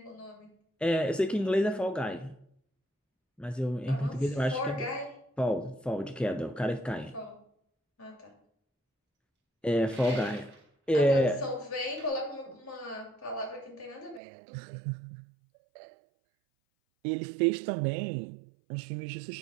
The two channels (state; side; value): drops out; left; at 14.2 s